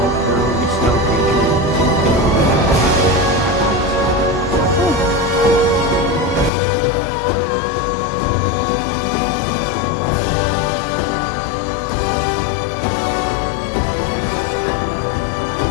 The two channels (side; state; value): right; drops out; at 6.5 s